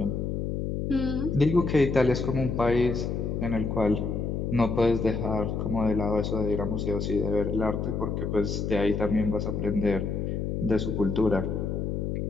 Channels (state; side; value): noise; left; hum, 2 dB below the sound